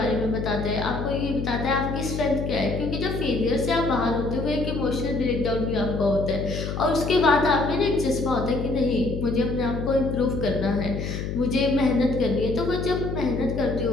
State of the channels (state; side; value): noise; left; hum, 4 dB below the sound